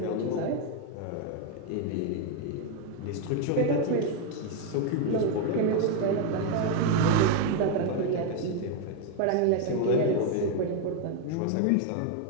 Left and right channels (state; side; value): different; both; correlation 0.01